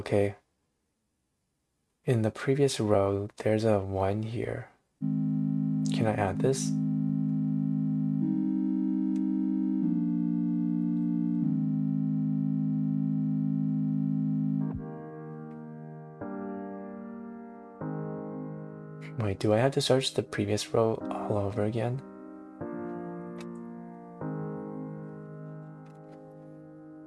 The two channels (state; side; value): identical; both; correlation 1.00